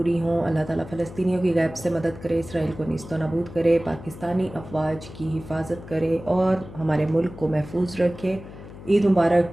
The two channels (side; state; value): left; noise; hum, 15 dB below the sound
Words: हों। अल्लाह ताला फ़लस्तीनियों की गैब से मदद करे, इसराइल को नीस्तो नाबूद करे, पाकिस्तानी अफवाज की हिफाजत करे और हमारे मुल्क को महफूज रखे। ईद मुबारक